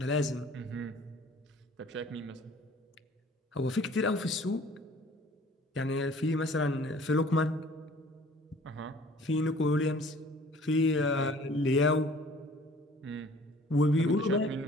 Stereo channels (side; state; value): both; normal; correlation 0.52